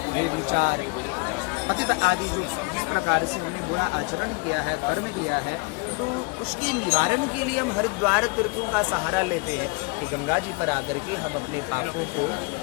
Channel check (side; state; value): right; quieter; 29.6 dB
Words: वे विचार अतीत आदि जो जिस प्रकार से हमने बुरा आचरण किया है, कर्म किया है, तो उसके निवारण के लिए हम हरिद्वार तीर्थों का सहारा लेते हैं कि गंगा जी पर आकर के हम अपने पापों को